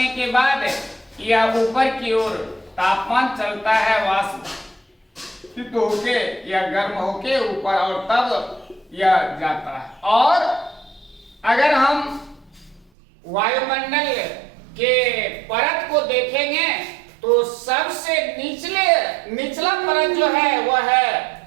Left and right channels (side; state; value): left; drops out; at 12.9 s